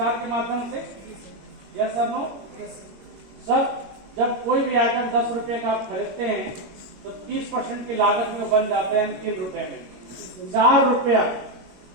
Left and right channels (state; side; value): late; left; 21 ms